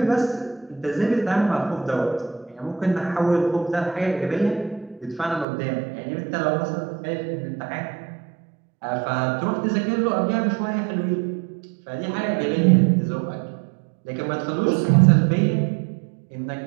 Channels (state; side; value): drops out; left; at 5.5 s